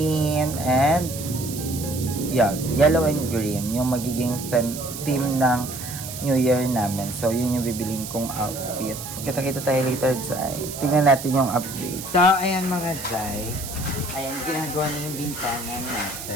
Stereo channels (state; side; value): noise; right; hiss, 9 dB below the sound